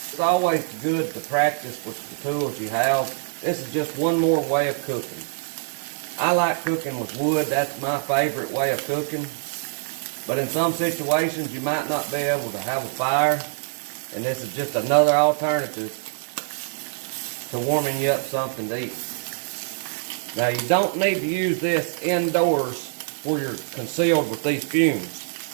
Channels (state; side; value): silent; left; digital silence